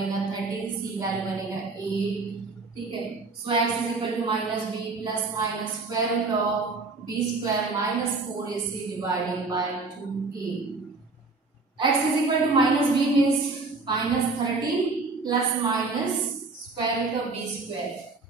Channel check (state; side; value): quieter; left; 3.8 dB